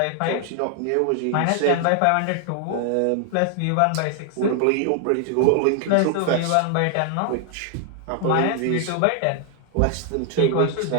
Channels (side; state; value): both; different; correlation 0.00